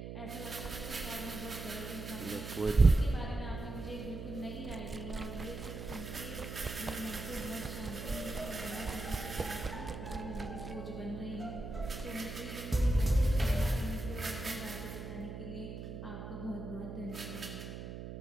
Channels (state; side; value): noise; right; hum, 8 dB below the sound